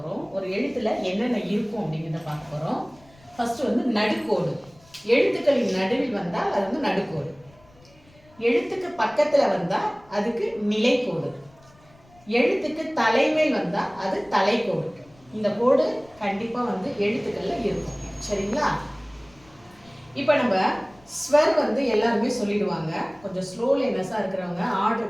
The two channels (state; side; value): noise; left; rumble, 28 dB below the sound